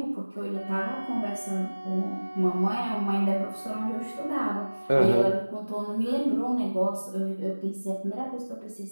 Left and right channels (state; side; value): inverted; both; correlation -1.00